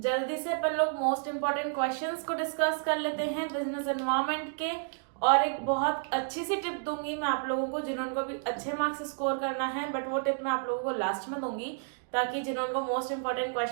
से अपन लोग मोस्ट इंपॉर्टेंट क्वेश्चंस को डिस्कस कर लेते हैं बिजनेस एनवायरनमेंट के। और एक बहुत अच्छी सी टिप दूंगी मैं आप लोगों को जिन्होंने भी अच्छे मार्क्स स्कोर करना है, बट वो टिप मैं आप लोगों को लास्ट में दूंगी ताकि जिन्होंने मोस्ट इंपॉर्टेंट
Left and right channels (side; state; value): left; silent; digital silence